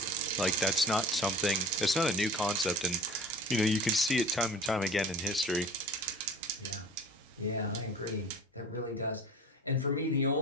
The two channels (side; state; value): both; normal; correlation 0.40